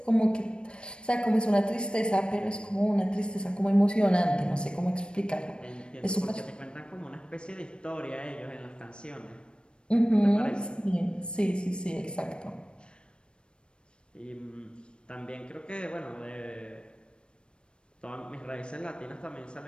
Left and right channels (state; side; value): late; right; 0.054 ms